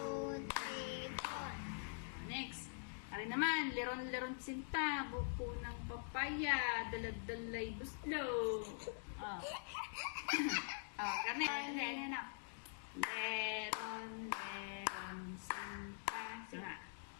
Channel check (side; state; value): right; silent; digital silence